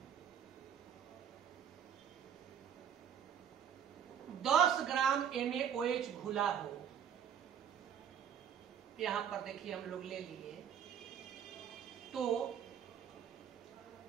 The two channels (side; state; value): left; quieter; 8.5 dB